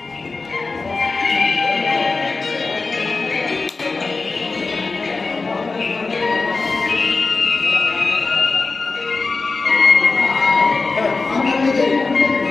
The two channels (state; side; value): quieter; right; 3.9 dB